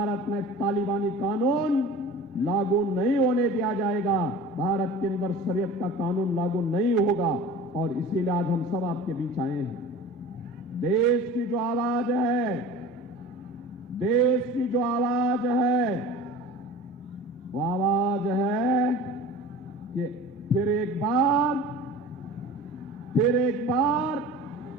में तालिबानी कानून लागू नहीं होने दिया जाएगा। भारत के अंदर शरीयत का कानून लागू नहीं होगा और इसीलिए आज हम सब आपके बीच आए हैं। देश की जो आवाज है, देश की जो आवाज है, वो आवाज है कि फिर एक बार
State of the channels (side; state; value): both; normal; correlation 0.39